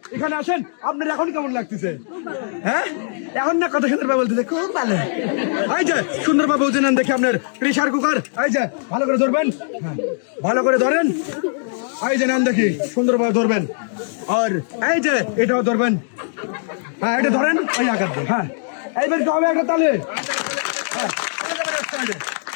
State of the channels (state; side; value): silent; right; digital silence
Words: এখানে আসেন। আপনার এখন কেমন লাগতেছে? হ্যাঁ এখন না কথা সুন্দরভাবে বলতেছে, খুব ভালো। এই যে সুন্দরভাবে বুঝে নেন দেখি আপনার প্রেসার কুকার। এই যে ভালো করে ধরবেন, ভালো করে ধরেন। এই যে নেন দেখি, সুন্দরভাবে ধরবেন। আর এই যে এটাও ধরবেন। হ্যাঁ এটা ধরেন, এই আঘাত দেন। হ্যাঁ এইবার কি হবে একটা তালে?